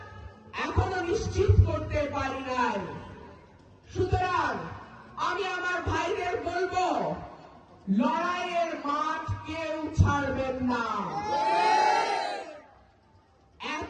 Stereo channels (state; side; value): identical; both; correlation 1.00